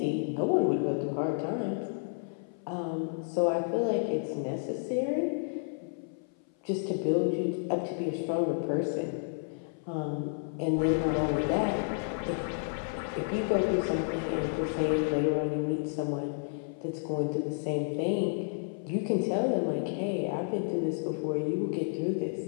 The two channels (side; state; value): right; silent; 57 dB below the other